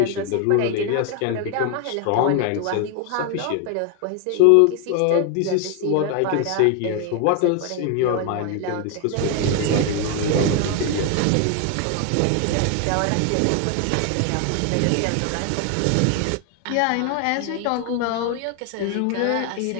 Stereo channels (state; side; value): different; both; correlation 0.01